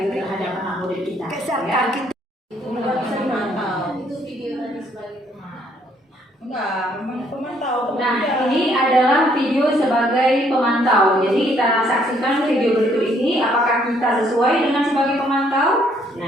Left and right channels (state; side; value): normal; both; correlation 0.67